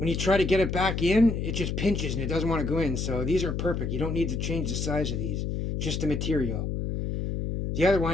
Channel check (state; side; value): noise; left; hum, 2 dB below the sound